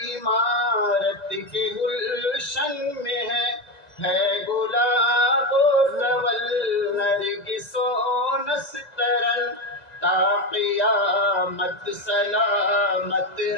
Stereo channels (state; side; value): late; right; 2.0 ms